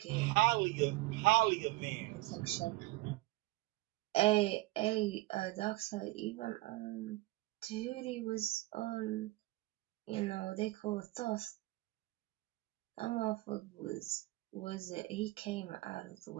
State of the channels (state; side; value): quieter; left; 20.1 dB